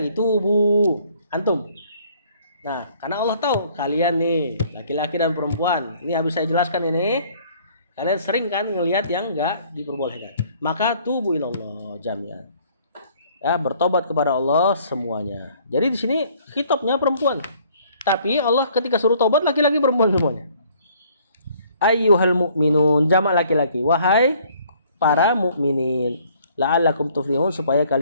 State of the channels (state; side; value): inverted; both; correlation -0.59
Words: Tubu antum. Nah, karena Allah tahu kalian nih laki-laki dan perempuan. Ini habis saya jelaskan ini. Kalian sering kan ngelihat yang enggak diperbolehkan. Maka tubu ilallah jami'an. Ya, bertobat kepada Allah semuanya. Jadi di sini khitabnya perempuan. Tapi Allah ketika suruh tobat laki-laki perempuan semuanya. Ayyuhal mu'minun, jamak laki-laki. Wahai para mukminin, la'allakum tuflihun, supaya